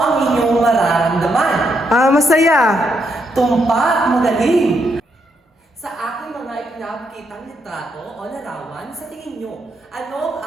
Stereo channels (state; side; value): normal; both; correlation 0.78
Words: inyong mararamdaman? Masaya. Tumpak, magaling! Sa aking mga ipinapakitang litrato o larawan, sa tingin nyo, ano ang